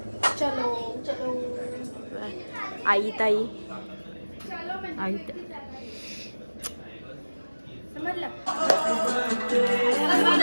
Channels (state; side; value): inverted; both; correlation -1.00